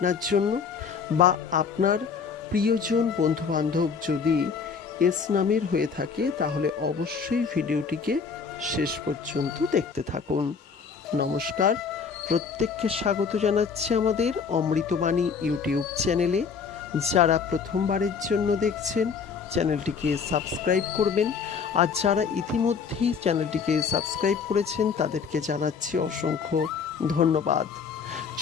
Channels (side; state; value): right; quieter; 5.9 dB